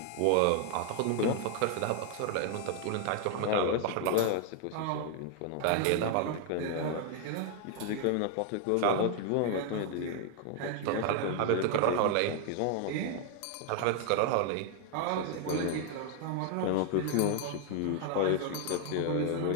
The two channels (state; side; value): different; both; correlation 0.00